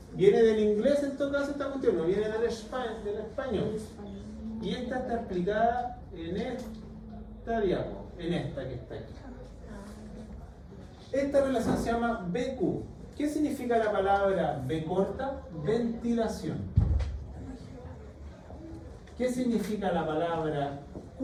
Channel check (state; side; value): identical; both; correlation 1.00